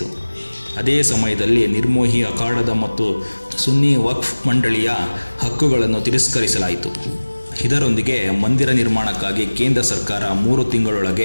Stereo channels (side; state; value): both; inverted; correlation -1.00